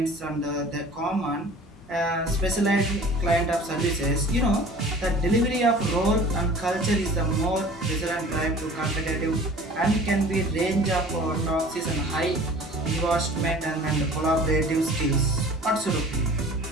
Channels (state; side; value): normal; both; correlation 0.45